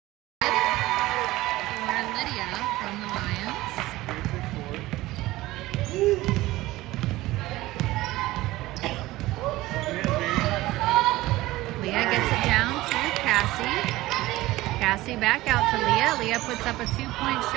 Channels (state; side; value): quieter; left; 17.9 dB